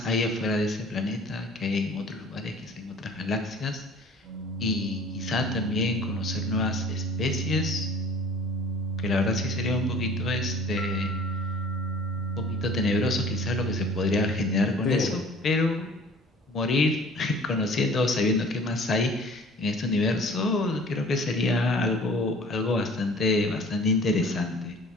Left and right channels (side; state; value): both; normal; correlation 0.48